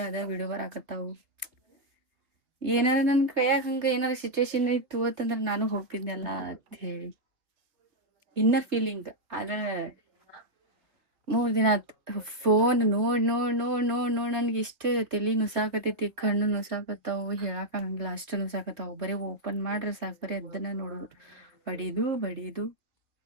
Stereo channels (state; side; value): late; left; 2.8 ms